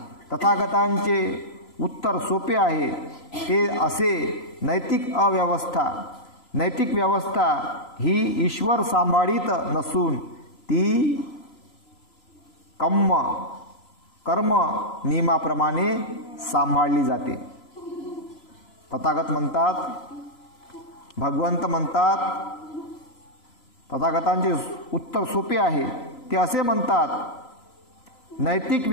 तथागतांचे उत्तर सोपे आहे. ते असे नैतिक व्यवस्था ही ईश्वर सांभाळीत नसून ती कर्म नियमाप्रमाणे सांभाळली जाते. तथागत म्हणतात, भगवंत म्हणतात, तथागतांचे उत्तर सोपे आहे. ते असे म्हणतात नैतिक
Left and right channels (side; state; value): right; late; 3.0 ms